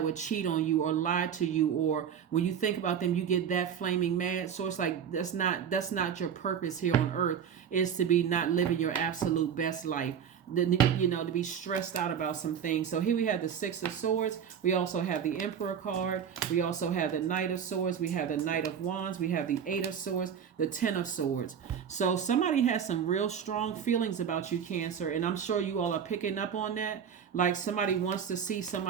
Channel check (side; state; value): left; quieter; 8.0 dB